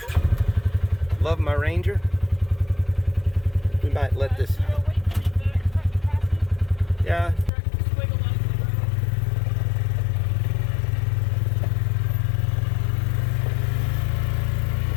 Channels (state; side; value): drops out; right; at 7.5 s